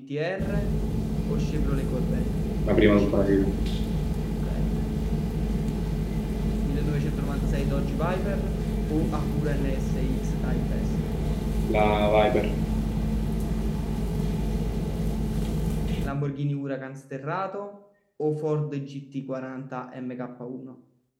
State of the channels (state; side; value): identical; both; correlation 1.00